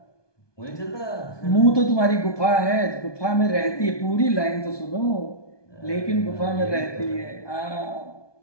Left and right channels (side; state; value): right; late; 1.2 ms